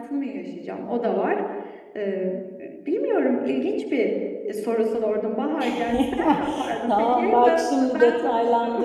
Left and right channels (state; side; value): identical; both; correlation 1.00